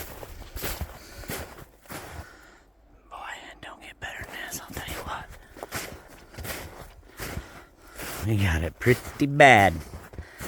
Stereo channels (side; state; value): both; identical; correlation 1.00